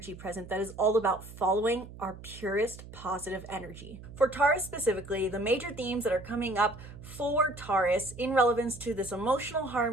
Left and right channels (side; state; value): right; noise; hum, 15 dB below the sound